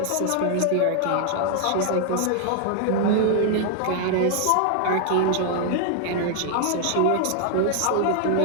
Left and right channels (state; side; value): different; both; correlation 0.00